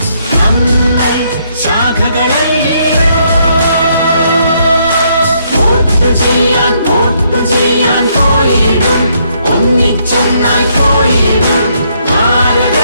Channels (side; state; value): both; inverted; correlation -0.72